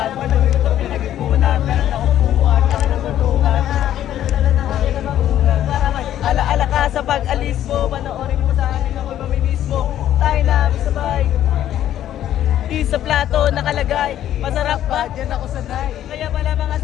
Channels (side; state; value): right; quieter; 11.7 dB